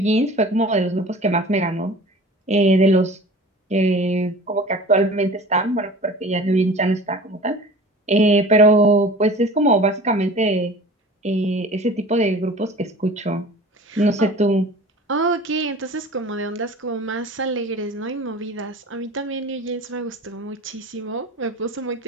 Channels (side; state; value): both; normal; correlation 0.41